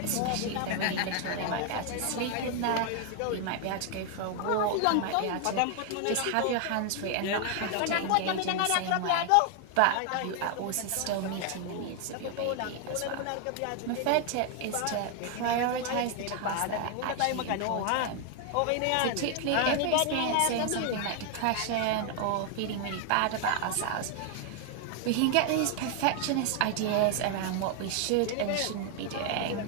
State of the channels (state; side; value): different; both; correlation 0.00